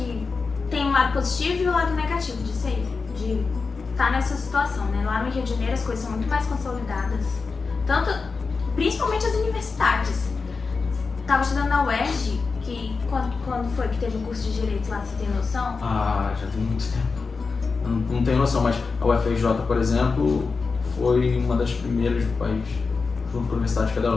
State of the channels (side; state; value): right; quieter; 4.6 dB